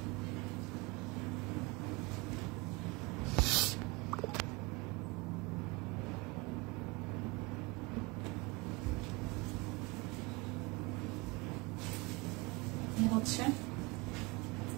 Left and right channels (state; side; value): quieter; left; 25.9 dB